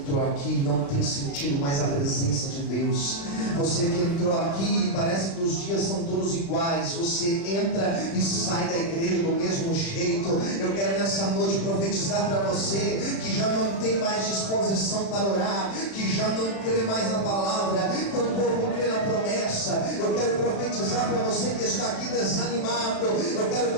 aqui e não tem sentido mais a presença de Deus. Você que entrou aqui e parece que os dias são todos iguais. Você entra e sai da igreja do mesmo jeito. Eu quero nessa noite profetizar para você que já não tem mais disposição para orar, que já não crê mais na palavra, tampouco crê na promessa. Eu quero profetizar para você que está aqui desanimado. Eu quero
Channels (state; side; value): late; right; 35 ms